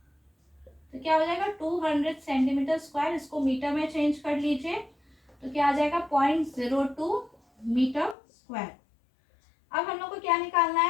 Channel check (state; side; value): drops out; right; at 8.2 s